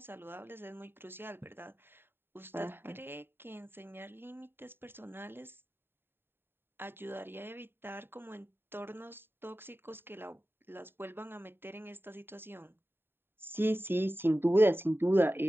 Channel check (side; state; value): left; late; 0.11 ms